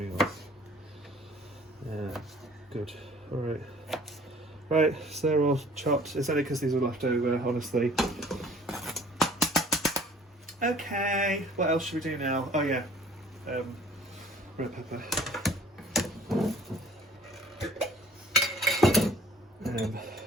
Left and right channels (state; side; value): normal; both; correlation 0.52